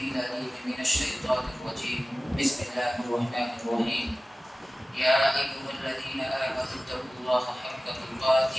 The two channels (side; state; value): both; normal; correlation 0.97